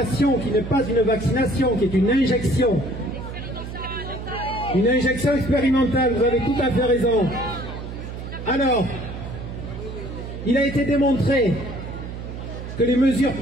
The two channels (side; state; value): right; noise; hum, 9 dB below the sound